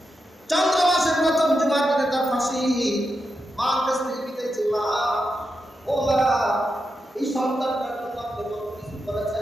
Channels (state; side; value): normal; both; correlation 0.87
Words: চন্দ্র মাসের প্রথম জুমার দিনে তার ফাঁসি। মার কাছ থেকে বিদায় চেয়ে, মা, ও মা, এই সন্তানটার জন্য আপনি কত কিছু